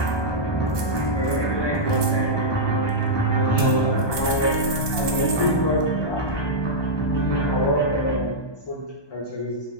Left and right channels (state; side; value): late; right; 1.2 ms